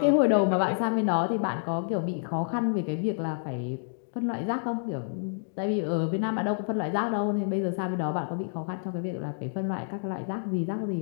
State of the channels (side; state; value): right; silent; digital silence